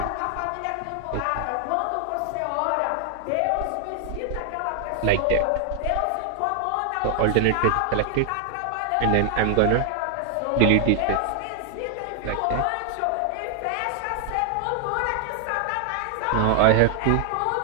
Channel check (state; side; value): different; both; correlation 0.00